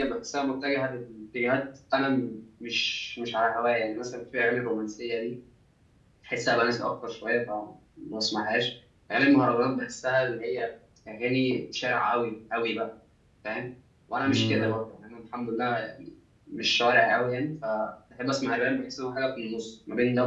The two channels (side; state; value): both; identical; correlation 1.00